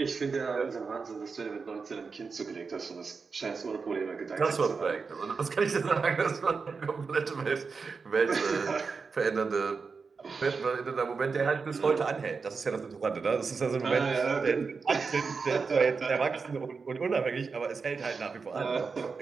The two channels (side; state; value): left; quieter; 4.9 dB